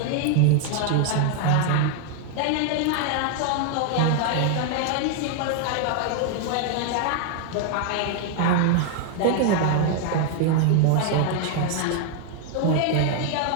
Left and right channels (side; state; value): both; different; correlation 0.00